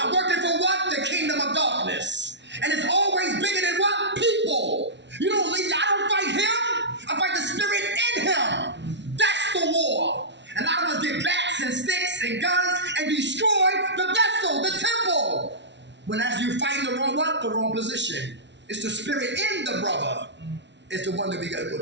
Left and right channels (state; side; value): late; left; 0.51 ms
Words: working for what? The kingdom of darkness. And it's always bigger than what? People. You don't leave, I don't fight him. I fight the spirit in him. That's the war. And a lot of us get bats and sticks and guns and destroy the vessel, the temple. When as you fight the wrong what? The wrong position. It's the spirit in the brother. It's the one that we gotta go